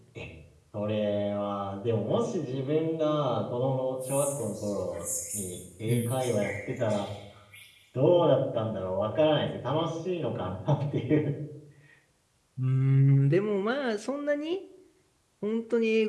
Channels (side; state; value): both; identical; correlation 1.00